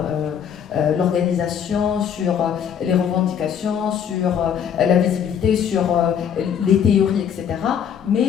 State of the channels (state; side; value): quieter; right; 8.3 dB